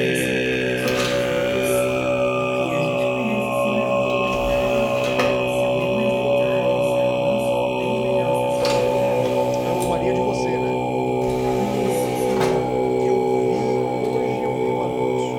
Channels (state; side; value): identical; both; correlation 1.00